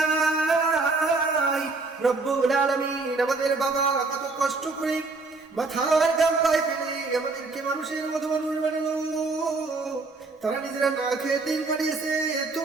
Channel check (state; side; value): quieter; left; 3.7 dB